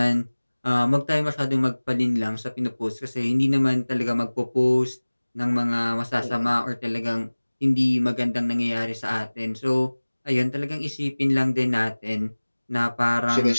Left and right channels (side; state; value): both; inverted; correlation -1.00